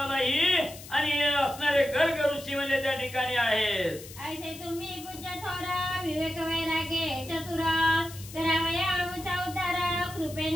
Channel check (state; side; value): noise; left; hiss, 15 dB below the sound